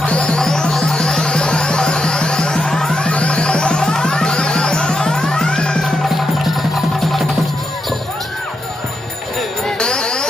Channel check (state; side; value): normal; both; correlation 0.84